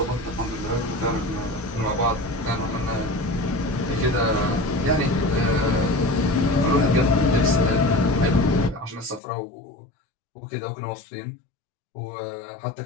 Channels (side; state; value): right; drops out; at 9.2 s